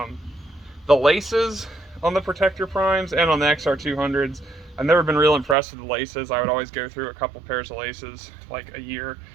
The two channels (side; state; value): left; drops out; at 5.6 s